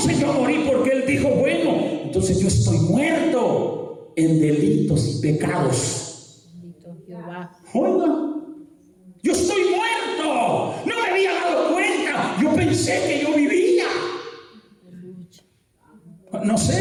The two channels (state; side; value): identical; both; correlation 1.00